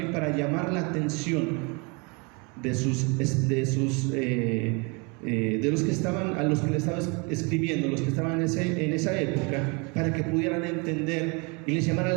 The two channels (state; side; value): quieter; left; 31.0 dB